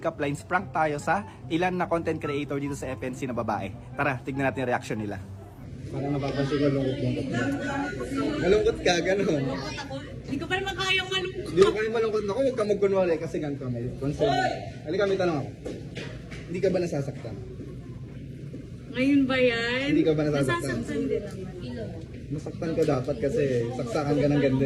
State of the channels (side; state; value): both; identical; correlation 1.00